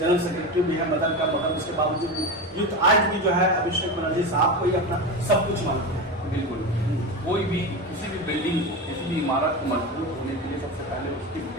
सेक्रेटरी भी है मदन का, मगर उसके बावजूद युद्ध आज भी जो है अभिषेक बनर्जी साहब को ही अपना सब कुछ मानते हैं। बिल्कुल, कोई भी किसी भी बिल्डिंग को, किसी भी इमारत को मजबूत होने के लिए सबसे पहले उसकी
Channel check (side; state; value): both; normal; correlation 0.21